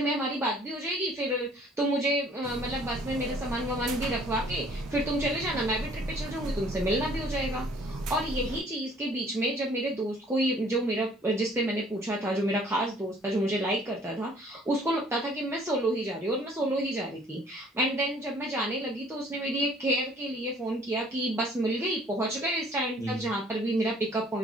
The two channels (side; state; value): both; normal; correlation 0.57